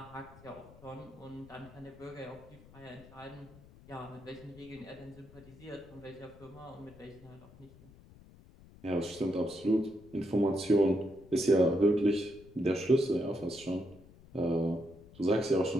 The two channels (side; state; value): left; noise; rumble, 22 dB below the sound